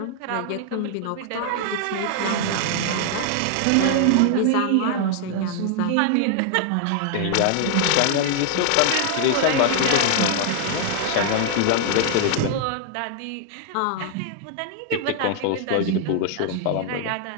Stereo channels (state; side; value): different; both; correlation 0.00